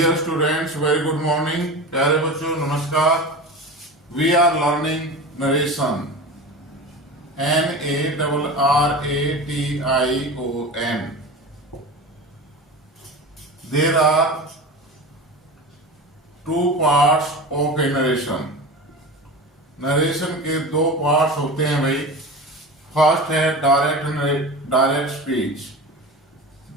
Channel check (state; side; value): normal; both; correlation 0.30